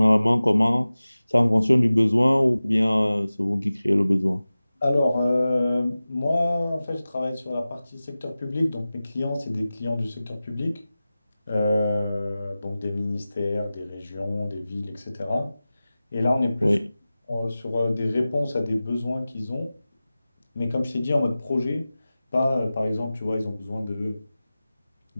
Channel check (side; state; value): both; inverted; correlation -0.96